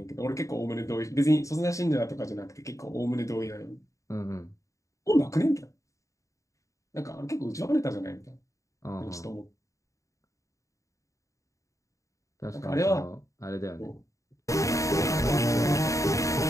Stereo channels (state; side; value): late; right; 0.16 ms